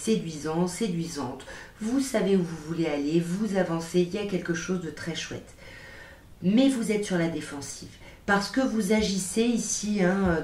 séduisante, vous savez où vous voulez aller, vous avancez, il y a quelque chose de très chouette. Mais vous êtes sur la défensive, parce que vous agissez ici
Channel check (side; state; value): both; identical; correlation 1.00